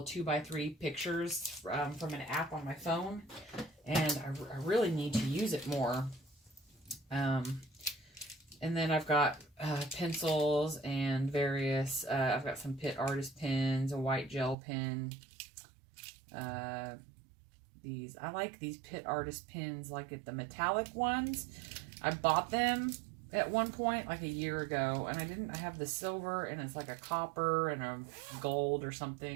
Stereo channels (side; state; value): left; drops out; at 14.6 s